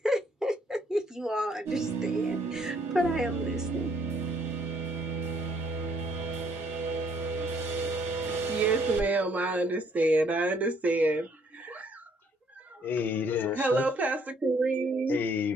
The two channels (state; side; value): normal; both; correlation 0.66